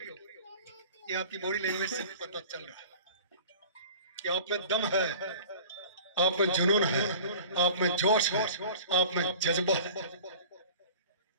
ये आपकी बॉडी लैंग्वेज से पता चल रहा है कि आप में दम है, आप में जुनून है, आप में जोश है, आप में जज्बा है।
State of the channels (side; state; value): both; inverted; correlation -0.42